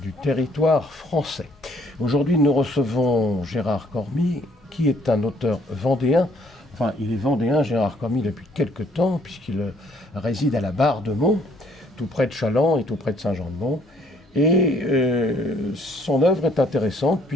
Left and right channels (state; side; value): normal; both; correlation 0.64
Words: territoire français. Aujourd'hui, nous recevons Gérard Cormy, qui est un auteur vendéen. Enfin, il est vendéen, Gérard Cormy, depuis quelque temps, puisqu'il réside à la Barre-de-Mont, tout près de Challans et tout près de Saint-Jean-de-Mont. Et son œuvre est intéressante